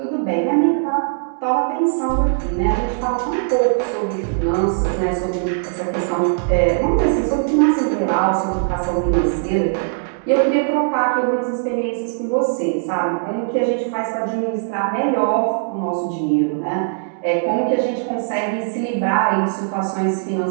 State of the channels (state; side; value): silent; left; digital silence